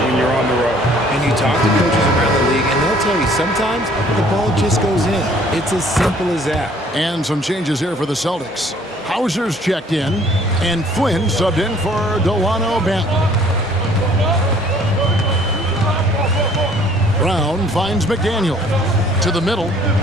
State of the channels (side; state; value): both; normal; correlation 0.57